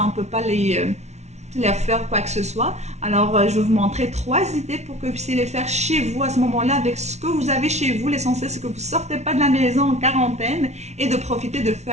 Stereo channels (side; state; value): left; late; 0.32 ms